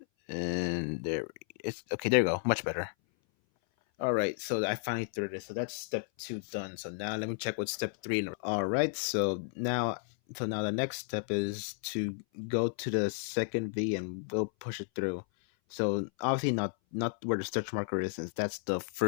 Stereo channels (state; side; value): silent; right; 56 dB below the other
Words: And there it's okay, there you go. Much better. Alright, so I finally threaded it. So that's step 2 done. So now let me check what step 3. Alright, so now the next step is to go to the second V and we'll push it through. So obviously not where the stretch marker is, since that's the